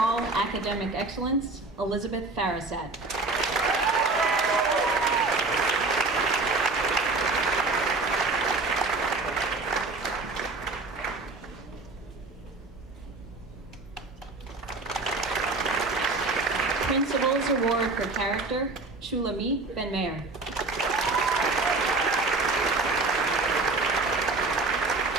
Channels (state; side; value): quieter; left; 3.6 dB